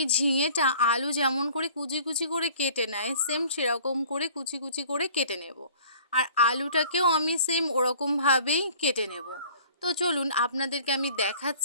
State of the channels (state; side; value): inverted; both; correlation -0.50